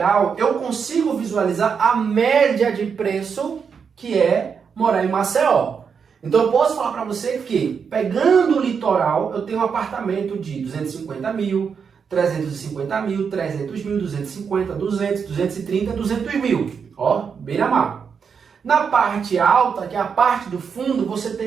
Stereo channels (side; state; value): left; quieter; 6.4 dB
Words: eu consigo visualizar a média de preço que é morar em Maceió. Então eu posso falar para você que, pegando o litoral, eu tenho um apartamento de 250 mil, 350 mil, 300 mil, 250, 200, 230, 200 mil. Ó, beira-mar. Na parte alta, que é a parte do fundo, você